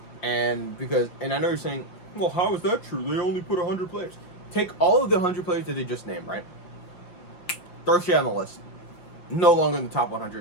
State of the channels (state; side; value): late; right; 5.9 ms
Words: and I know you're saying, well, how is that true? They only put 100 players. Take all of the 100 players that they just named, right? Throw shit on the list. No longer in the top